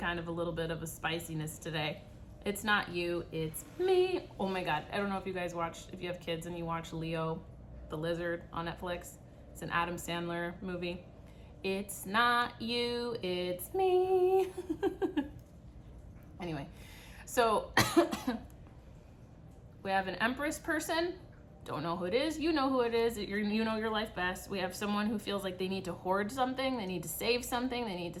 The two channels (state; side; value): identical; both; correlation 1.00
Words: of a little bit of a spiciness today. It's not you, it's me. Oh my God. I don't know if you guys if you have kids and you watch Leo the Lizard on Netflix. It's an Adam Sandler movie. It's not you, it's me. Anyway, so we have an Empress person. Don't know who it is. You know who it is. You know your life best. We have someone who feels like they need to hoard something. They need to save something. They need to